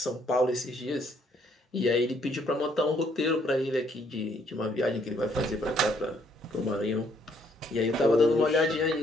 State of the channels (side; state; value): both; normal; correlation 0.68